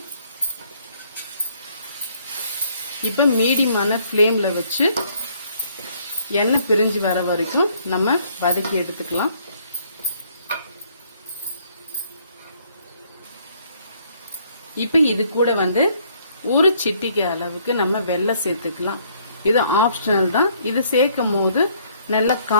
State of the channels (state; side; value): inverted; both; correlation -0.64